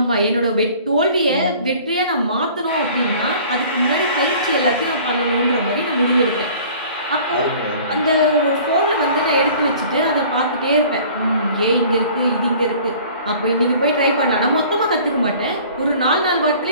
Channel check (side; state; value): both; inverted; correlation -0.49